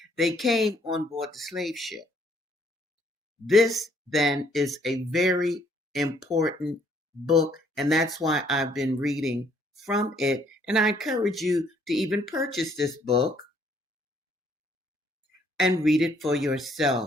They came on board the slave ship. This then is a very important book, and that's why I've been reading from it. And I encourage you to even purchase this book and read it for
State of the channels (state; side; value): normal; both; correlation 0.66